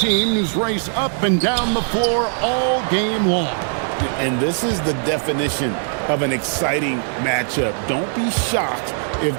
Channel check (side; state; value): left; silent; 57 dB below the other